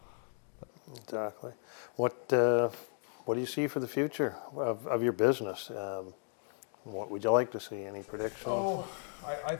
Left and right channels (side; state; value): right; silent; 55 dB below the other